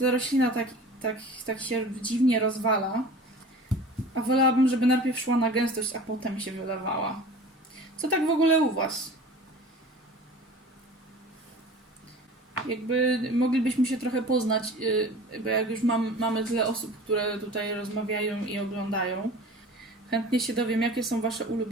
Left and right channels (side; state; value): both; normal; correlation 0.41